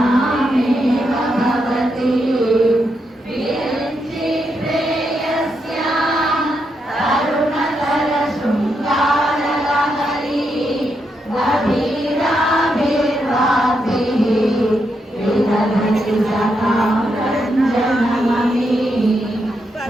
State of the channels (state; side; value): normal; both; correlation 0.82